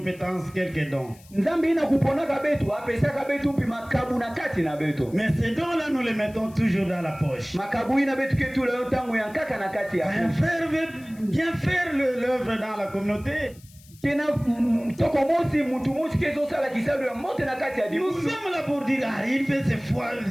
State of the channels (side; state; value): left; noise; hiss, 25 dB below the sound